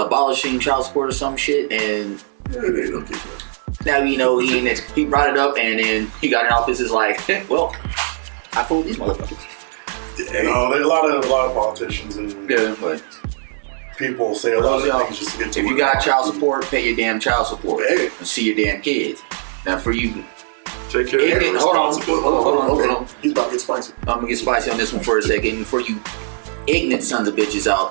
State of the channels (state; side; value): silent; left; digital silence